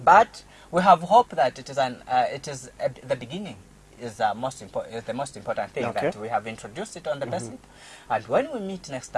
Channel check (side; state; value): both; identical; correlation 1.00